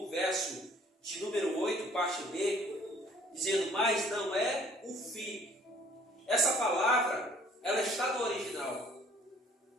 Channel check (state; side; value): normal; both; correlation 0.57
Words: verso de número 8, parte B, dizendo, mas não é o fim. Essa palavra, ela está no original,